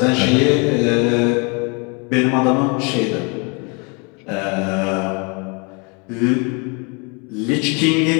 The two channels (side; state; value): right; quieter; 32.6 dB